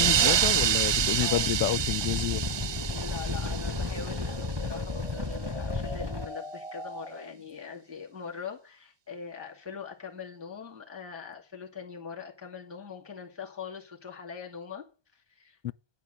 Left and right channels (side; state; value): left; late; 1.2 ms